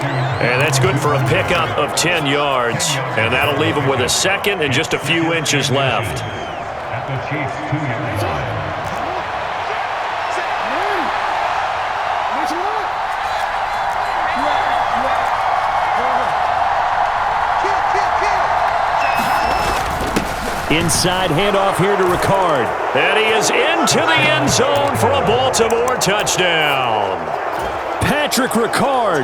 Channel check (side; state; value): both; identical; correlation 1.00